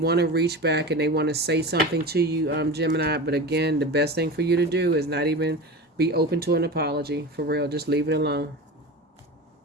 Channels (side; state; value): both; normal; correlation 0.29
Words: to reach back and they want to say something to you, Gemini, but again, the best thing for you to do is not even be open to an apology. For real, just leave it alone.